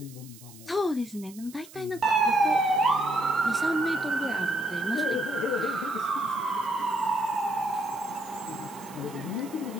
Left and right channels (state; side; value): noise; right; hiss, 20 dB below the sound